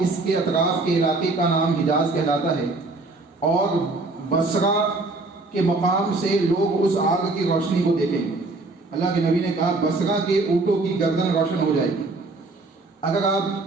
اس کے اطراف کے علاقے کا نام حجاز کہلاتا ہے، اور بصرہ کے مقام سے لوگ اس آگ کی روشنی کو دیکھیں گے۔ اللہ کے نبی نے کہا بصرہ کے اونٹوں کی گردن روشن ہو جائے گی۔ اگر آپ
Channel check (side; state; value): left; quieter; 3.3 dB